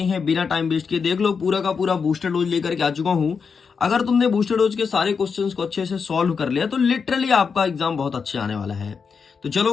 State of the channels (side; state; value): right; quieter; 5.7 dB